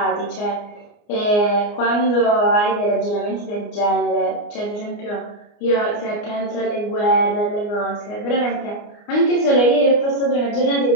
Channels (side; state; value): right; late; 29 ms